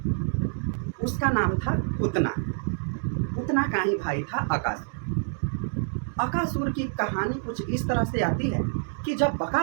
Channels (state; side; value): silent; left; 60 dB below the other